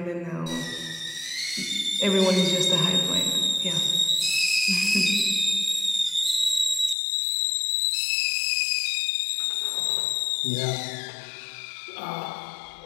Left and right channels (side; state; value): right; drops out; at 7.0 s